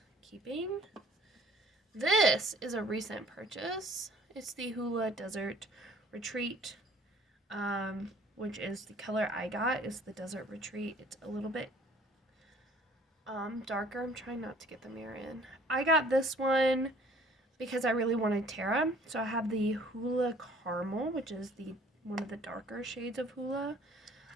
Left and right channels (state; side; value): normal; both; correlation 0.54